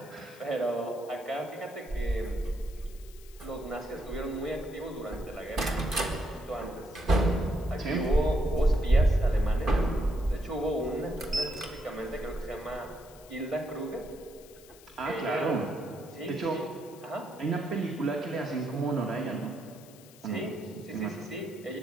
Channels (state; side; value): noise; left; hiss, 22 dB below the sound